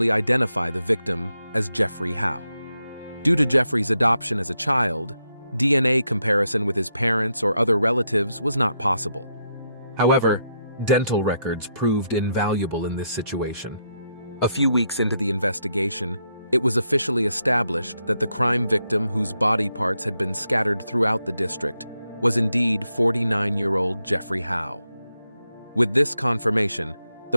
identify the victim as Jeffrey Howe. Due to Jeffrey's adoption as a child, DNA comparison with his parents or other relatives was not possible. However, dental records proved invaluable in this situation. A few weeks into the investigation, it was officially established that the crime victim, whose body parts had been scattered throughout the district, was indeed 49-year-old Jeffrey Howe. With this confirmation,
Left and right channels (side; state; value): both; inverted; correlation -0.81